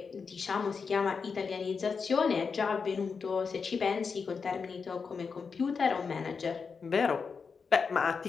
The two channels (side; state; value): right; quieter; 5.4 dB